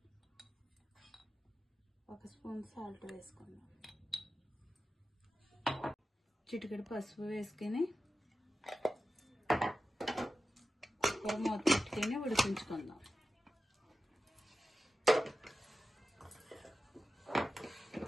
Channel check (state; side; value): normal; both; correlation 0.93